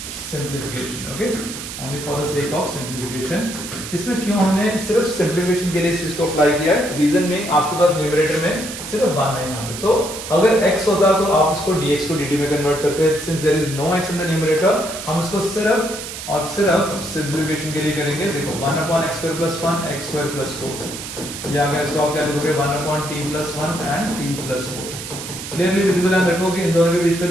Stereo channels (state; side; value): noise; right; hiss, 9 dB below the sound